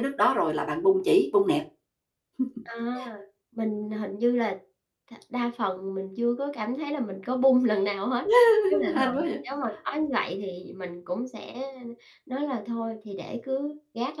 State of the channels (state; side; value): identical; both; correlation 1.00